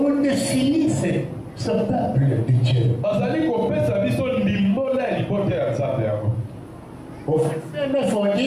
nous définit ce peuple de Dieu. Au verset 9, on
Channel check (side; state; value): both; identical; correlation 1.00